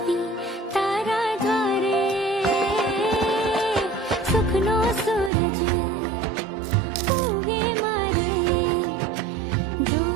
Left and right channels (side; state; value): left; drops out; at 5.3 s